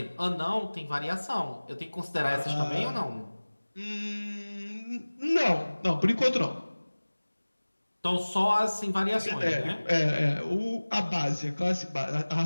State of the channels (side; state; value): both; inverted; correlation -1.00